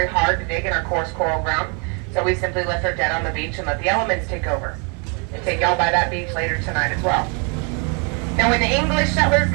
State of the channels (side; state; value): left; quieter; 35.4 dB